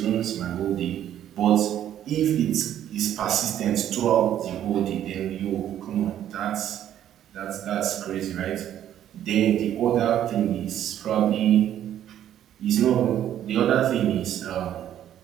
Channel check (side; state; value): left; quieter; 11.0 dB